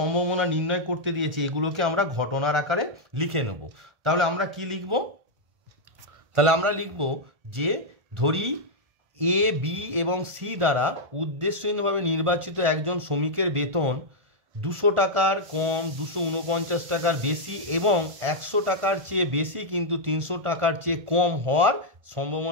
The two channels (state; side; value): late; left; 1.4 ms